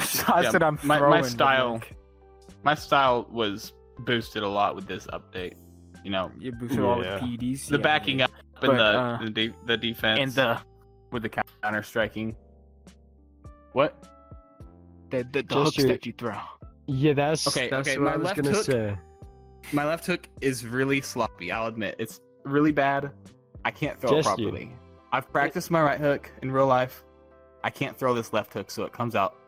Yeah, that I'm my throwing. style- like, my style was boosted a lot with this update. you boosted all the Yeah. PDs. The yeah, backing yeah. up and But, the defense and the with the counter striking. What? hooks Jester- that you throw. Yeah, that's Okay, what my I was left gonna hook- say. My left hook is really sloppy. I'll admit it's really bad. I can't throw it Jester. properly. I've practiced my right hook in real life. I can't throw this left hook, so it comes out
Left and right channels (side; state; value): both; identical; correlation 1.00